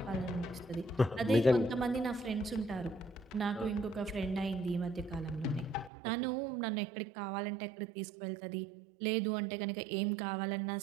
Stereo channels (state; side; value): drops out; left; at 5.9 s